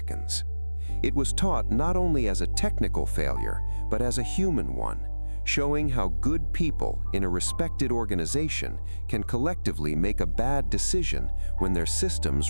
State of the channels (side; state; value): both; inverted; correlation -1.00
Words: It was taught not only as a technical failure, but as a human one, showing how good people in a respected organization can collectively make a bad decision when their